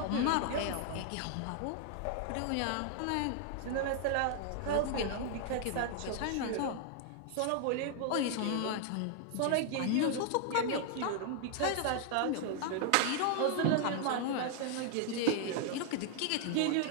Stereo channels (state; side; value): different; both; correlation 0.00